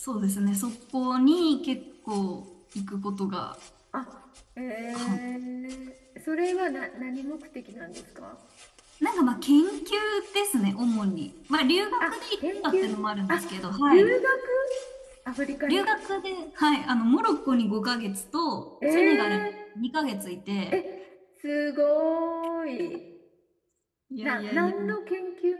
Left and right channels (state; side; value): identical; both; correlation 1.00